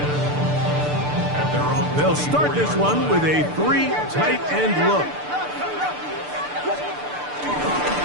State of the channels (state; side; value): late; left; 6.8 ms